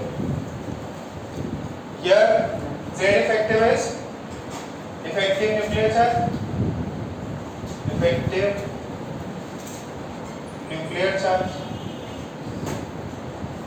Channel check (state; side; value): identical; both; correlation 1.00